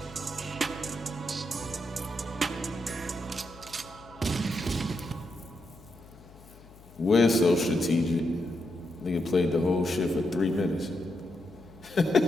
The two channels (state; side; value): noise; left; hum, 22 dB below the sound